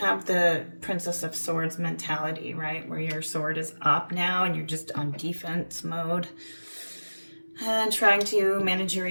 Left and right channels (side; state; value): both; inverted; correlation -1.00